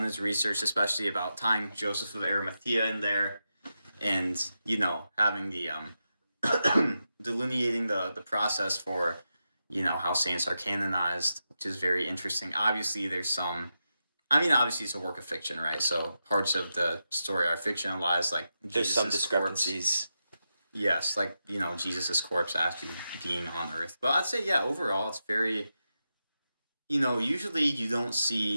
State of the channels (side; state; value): both; inverted; correlation -0.88